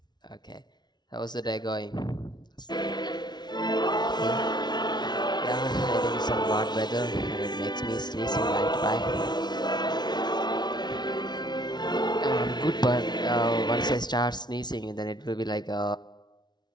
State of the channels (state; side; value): late; right; 0.20 ms